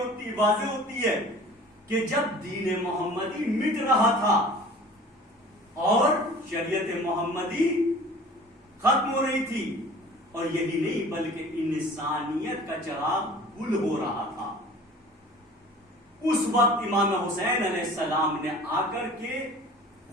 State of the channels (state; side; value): normal; both; correlation 0.45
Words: ہوتی ہے کہ جب دین محمدی مٹ رہا تھا اور شریعت محمدی ختم ہو رہی تھی، اور یہی نہیں بلکہ انسانیت کا چراغ گل ہو رہا تھا، اس وقت امام حسین علیہ السلام نے آ کر کے